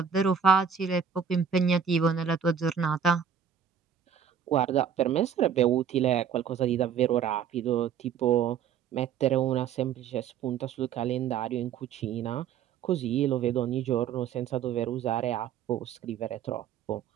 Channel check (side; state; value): left; quieter; 7.7 dB